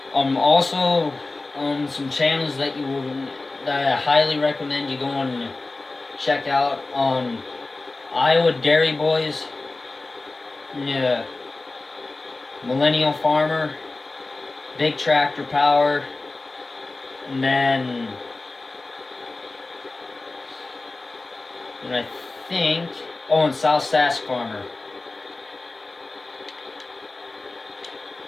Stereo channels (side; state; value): right; quieter; 3.3 dB